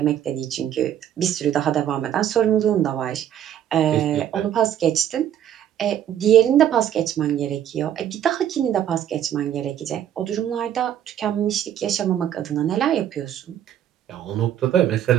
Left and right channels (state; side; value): quieter; left; 10.5 dB